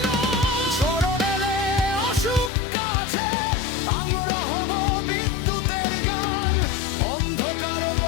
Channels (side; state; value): right; drops out; at 2.5 s